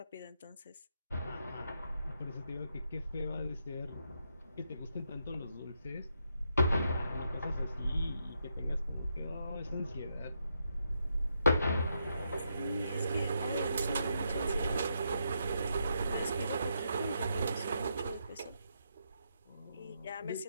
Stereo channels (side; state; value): both; inverted; correlation -0.80